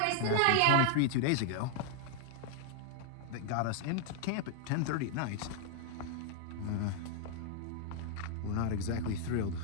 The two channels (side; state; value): both; different; correlation 0.00